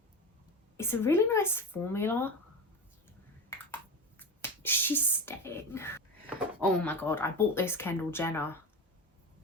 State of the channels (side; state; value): both; normal; correlation 0.24